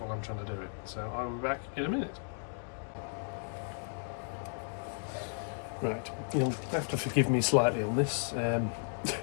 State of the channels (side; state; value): right; silent; digital silence